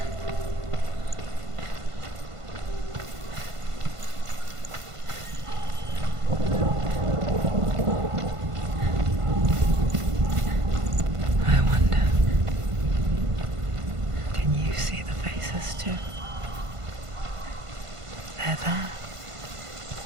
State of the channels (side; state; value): left; late; 1.5 ms